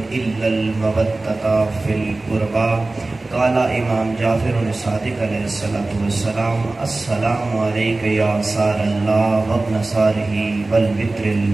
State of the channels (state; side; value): quieter; left; 3.1 dB